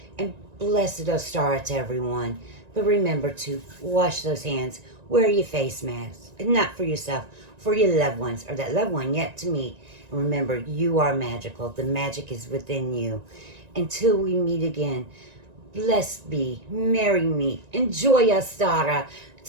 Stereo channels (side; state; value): left; late; 1.9 ms